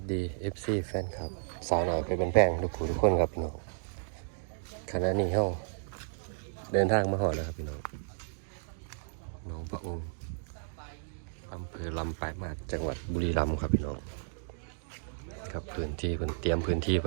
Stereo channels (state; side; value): silent; left; digital silence